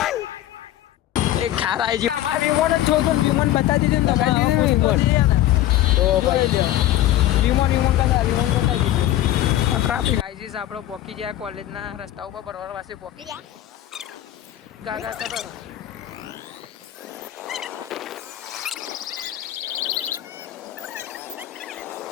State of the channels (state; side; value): quieter; right; 13.6 dB